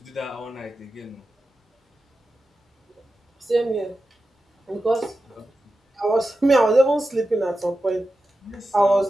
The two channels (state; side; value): normal; both; correlation 0.92